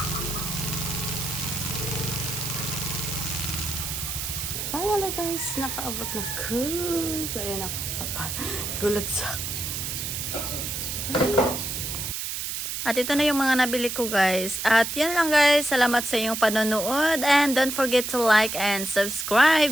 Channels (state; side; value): noise; right; hiss, 4 dB below the sound